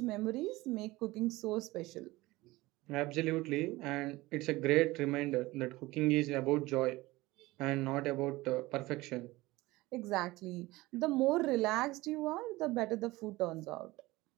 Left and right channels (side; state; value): left; quieter; 19.9 dB